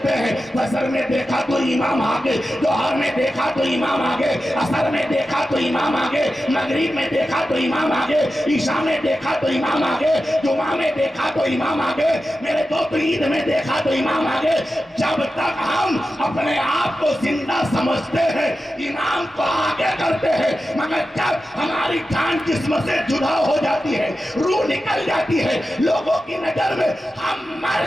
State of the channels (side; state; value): both; normal; correlation 0.92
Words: ہیں، فجر میں دیکھا تو امام آگے، ظہر میں دیکھا تو امام آگے، عصر میں دیکھا تو امام آگے، مغرب میں دیکھا تو امام آگے، عشاء میں دیکھا تو امام آگے، جمعہ میں دیکھا تو امام آگے، میرے دوست عید میں دیکھا تو امام آگے۔ جب تک ہم اپنے آپ کو زندہ سمجھتے ہیں امام کو آگے کرتے ہیں، مگر جب ہماری جان جسم سے جدا ہو جاتی ہے، روح نکل جاتی ہے، لوگوں کی نظر میں ہم مر